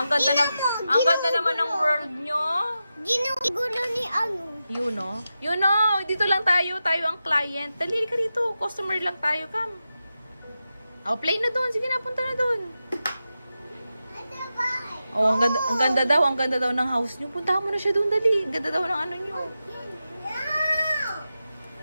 ganda naman ng world nyo. Ginugulo ni ano. You know, dito lang tayo ang client. Dali ka dito, customer lang tayo, come. Oh, play na doon. Sige na, punta na doon. Oh, ang ganda daw ng house nyo. Puntahan mo na siya doon, dali. Ang ganda daw ng ano nyo.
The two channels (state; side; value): inverted; both; correlation -0.91